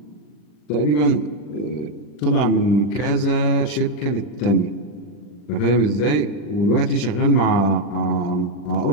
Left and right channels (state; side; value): late; right; 40 ms